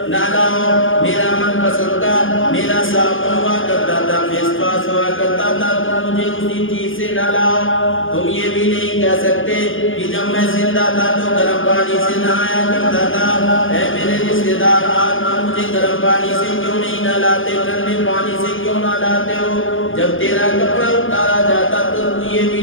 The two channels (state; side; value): late; right; 0.58 ms